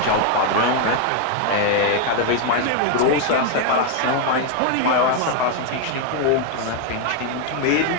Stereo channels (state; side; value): different; both; correlation 0.01